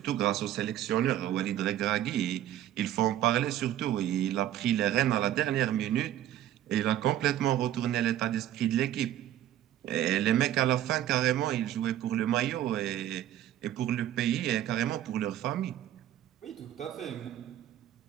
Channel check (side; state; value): left; quieter; 12.2 dB